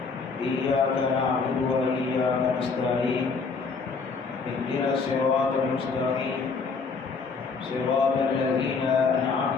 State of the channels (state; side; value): quieter; right; 4.8 dB